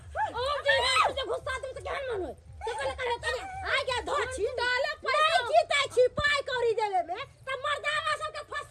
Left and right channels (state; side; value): identical; both; correlation 1.00